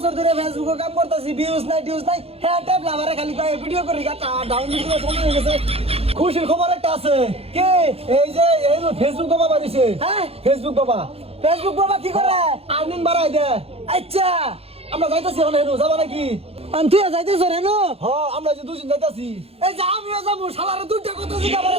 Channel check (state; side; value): late; left; 0.29 ms